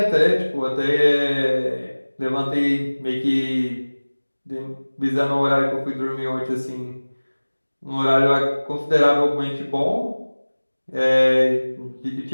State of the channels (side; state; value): both; inverted; correlation -1.00